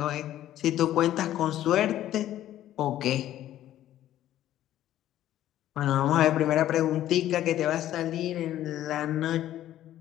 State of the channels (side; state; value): right; quieter; 12.8 dB